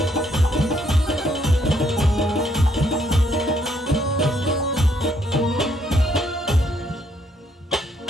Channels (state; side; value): normal; both; correlation 0.70